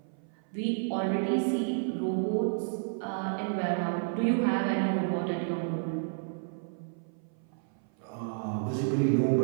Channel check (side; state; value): left; silent; 57 dB below the other